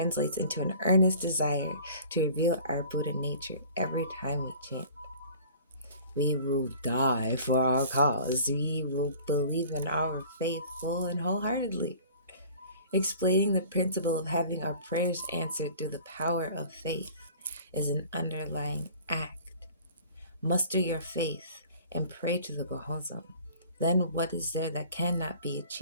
into an earnest desire to reveal our Buddha nature every time we chant. We will die for our cause. We will believe in our faith full and wholeheartedly. Explaining the principle of having our prayers answered through the power of faith is an underlying act. Muster your faith and pray to the Gohonzon. Then what is there that cannot be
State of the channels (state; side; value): inverted; both; correlation -0.46